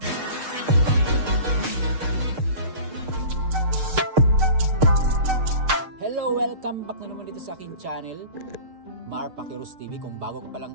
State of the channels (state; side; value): late; left; 6.6 ms